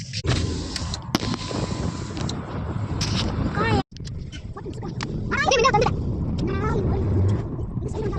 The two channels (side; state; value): both; identical; correlation 1.00